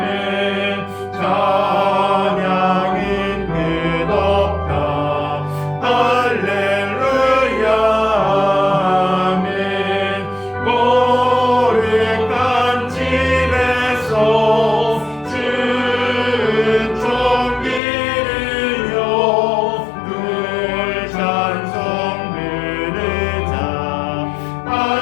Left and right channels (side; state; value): right; drops out; at 17.8 s